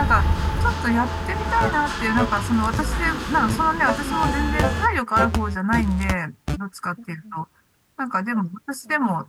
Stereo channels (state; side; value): identical; both; correlation 1.00